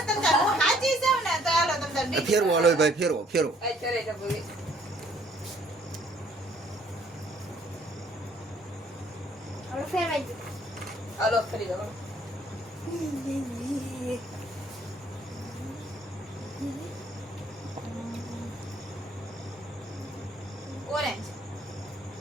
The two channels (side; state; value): both; normal; correlation 0.62